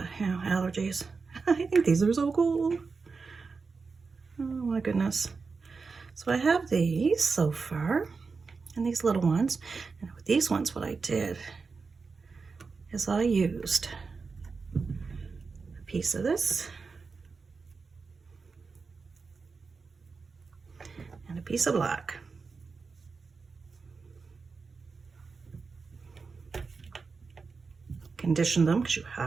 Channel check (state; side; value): quieter; left; 4.7 dB